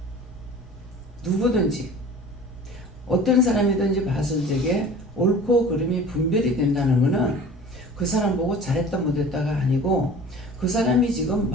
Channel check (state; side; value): normal; both; correlation 0.42